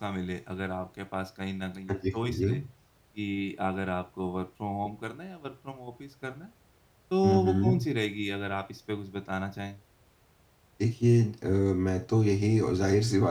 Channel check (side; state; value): both; identical; correlation 1.00